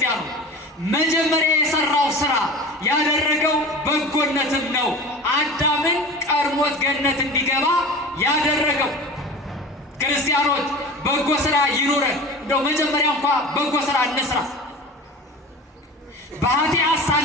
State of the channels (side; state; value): both; normal; correlation 0.34